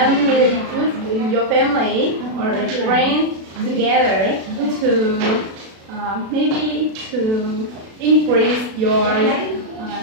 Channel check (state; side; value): late; left; 36 ms